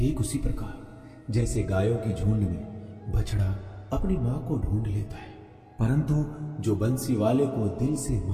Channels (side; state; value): both; identical; correlation 1.00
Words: उसी प्रकार जैसे गायों की झुंड में बछड़ा अपनी मां को ढूंढ लेता है। परंतु जो बंसी वाले को दिल से